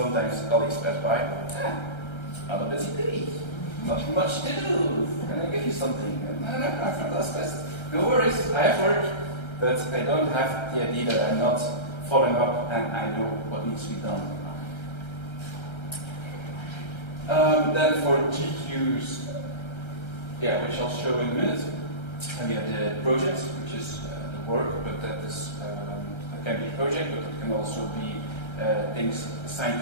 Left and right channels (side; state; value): right; late; 1.3 ms